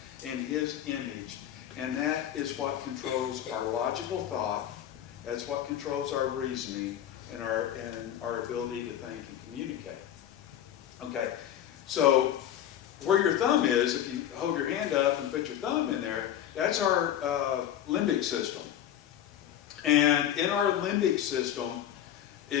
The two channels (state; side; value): quieter; right; 10.9 dB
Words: in His image, and that is what controls our logical thought. That's what controls our reasoning and our ability to think and communicate. Okay, so where your thumb is, if you hold your hand up and put your thumb in there, that's our limbic system. And in our limbic system